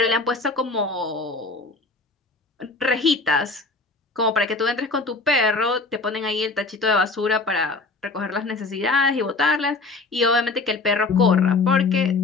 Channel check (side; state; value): right; quieter; 3.6 dB